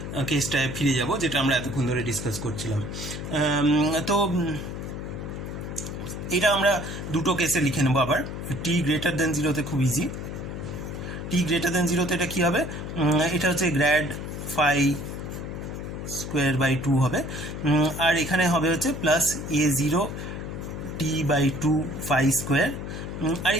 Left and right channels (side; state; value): left; noise; hum, 7 dB below the sound